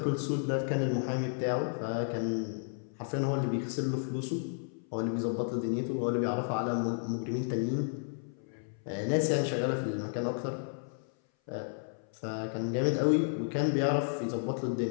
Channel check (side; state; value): right; silent; 56 dB below the other